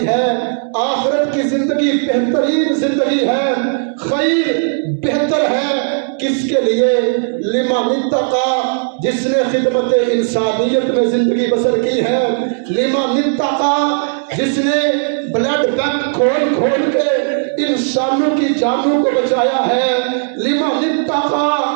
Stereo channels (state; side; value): silent; left; digital silence